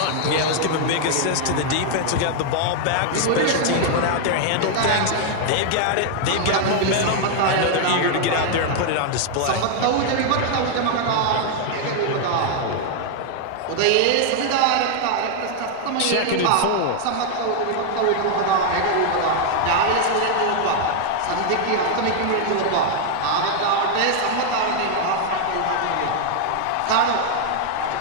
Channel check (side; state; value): both; different; correlation 0.00